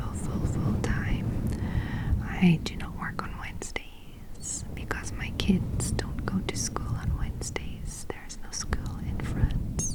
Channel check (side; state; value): both; identical; correlation 1.00